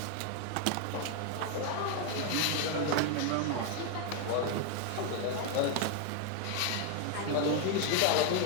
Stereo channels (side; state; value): both; different; correlation 0.01